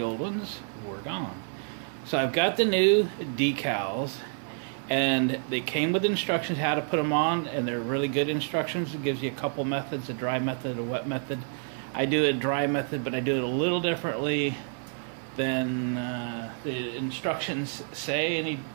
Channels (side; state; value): left; silent; 59 dB below the other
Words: old ones were gone. So I've got the new decals, and they came with instructions how to put them on, and they're really good instructions. It gives you a couple methods, a dry method, a wet method. I do a dry method, but I do it a little differently than the instructions say, a